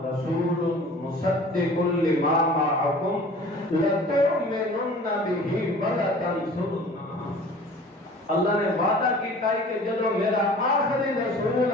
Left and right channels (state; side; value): normal; both; correlation 0.45